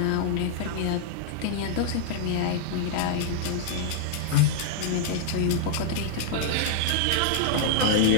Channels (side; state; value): both; different; correlation -0.01